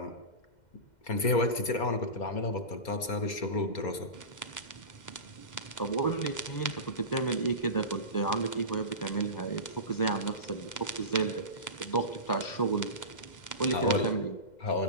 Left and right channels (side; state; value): right; late; 2.1 ms